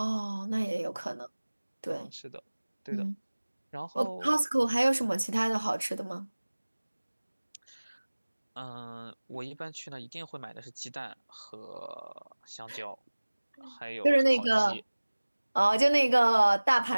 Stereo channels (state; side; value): inverted; both; correlation -1.00